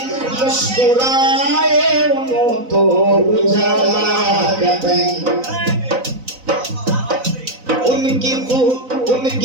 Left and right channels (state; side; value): late; left; 4.0 ms